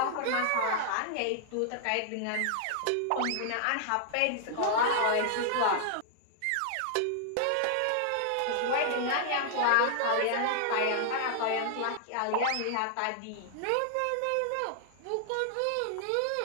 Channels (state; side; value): different; both; correlation -0.01